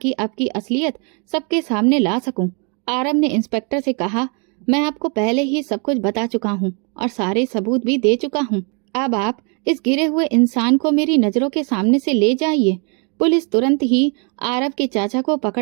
आपकी असलियत सबके सामने ला सकूं। आरब ने इंस्पेक्टर से कहा, मैं आपको पहले ही सब कुछ बता चुका हूं और सारे सबूत भी दे चुका हूं। अब आप इस गिरे हुए इंसान को मेरी नजरों के सामने से ले जाइए। पुलिस तुरंत ही आरब के चाचा को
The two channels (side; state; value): left; quieter; 36.4 dB